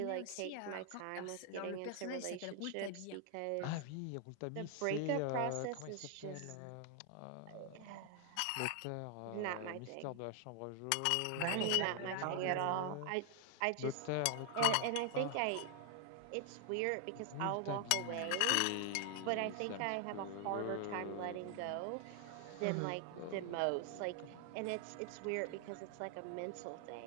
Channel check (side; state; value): both; different; correlation 0.00